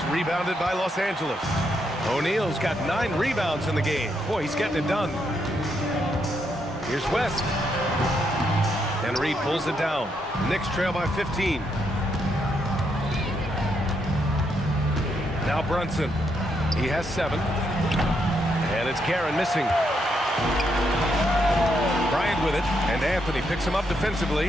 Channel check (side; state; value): both; normal; correlation 0.78